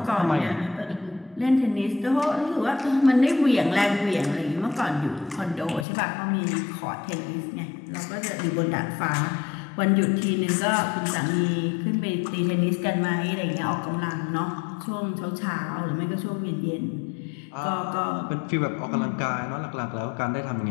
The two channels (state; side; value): drops out; right; at 5.9 s